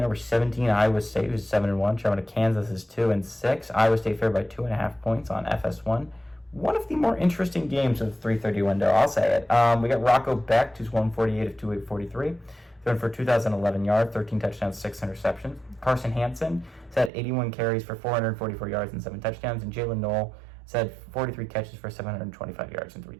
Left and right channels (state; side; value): drops out; left; at 17.1 s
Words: 17, Iowa State, who's 7-1. Traveling to Kansas is 2-6. Iowa State favored by 2.5 points on FS1. One of the more interesting games of the 3:30 window, I'll say it. We got Rocco Becht, who's 148 of 243, throwing for 2,011 yards, 13 touchdowns, 6 interceptions. Carson Hansen has had 81 carries for 444 yards and 7 touchdowns, and Jalen Knoll has had 43 catches for 725 yards and 3